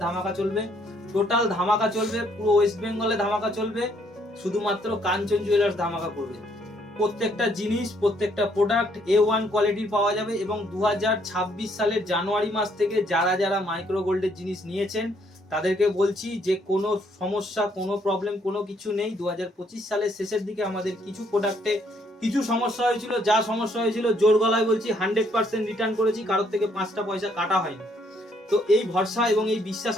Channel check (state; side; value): normal; both; correlation 0.68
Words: ধামাকা চলবে, টোটাল ধামাকা চলবে, পুরো ওয়েস্ট বেঙ্গলে ধামাকা চলবে। শুধুমাত্র কাঞ্চন জুয়েলার্স ধামাকা করবে। প্রত্যেকটা জিনিস, প্রত্যেকটা প্রোডাক্ট A1 কোয়ালিটির পাওয়া যাবে। এবং 2026 সালের জানুয়ারি মাস থেকে যারা মাইক্রো গোল্ডের জিনিস নিয়েছেন তাদেরকে বলছি যে কোনো সমস্যা, কোনো প্রবলেম, কোনো কিছু নেই। 2025 সালের শেষের দিকে আমাদের কিছু প্রোডাক্টে কিছু সমস্যা হয়েছিল, যা সমস্যা হয়েছিল জোর গলায় বলছি 100% রিটার্ন করেছি, কারোর থেকে 5টা পয়সা কাটা হয়নি। তো এই ভরসা এবং এই বিশ্বাস